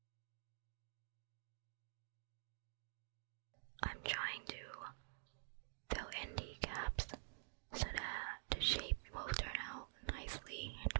I'm trying to fill in the gaps so that the shape will turn out nicely in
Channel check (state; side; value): silent; left; digital silence